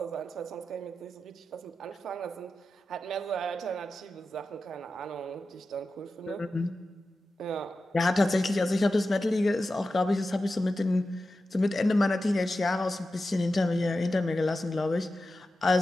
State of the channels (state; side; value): normal; both; correlation 0.92